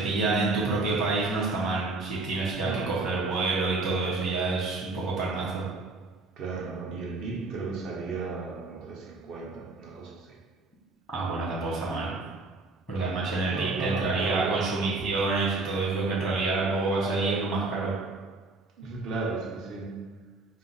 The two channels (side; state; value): left; quieter; 3.3 dB